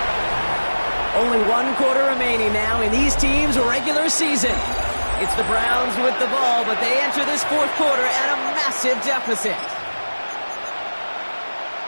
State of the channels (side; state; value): both; inverted; correlation -1.00